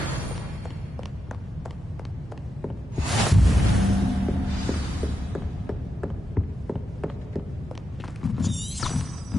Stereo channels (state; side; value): normal; both; correlation 0.87